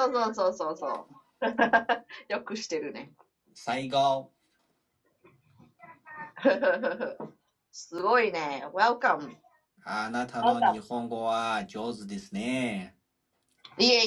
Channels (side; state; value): both; identical; correlation 1.00